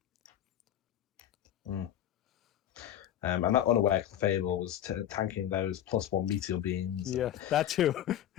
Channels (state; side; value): quieter; right; 11.2 dB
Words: Mm. And that unaware Fable was tanking those +1 meteor beams. Yeah, that too.